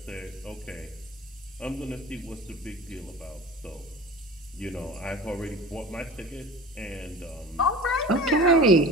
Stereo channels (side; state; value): both; normal; correlation 0.37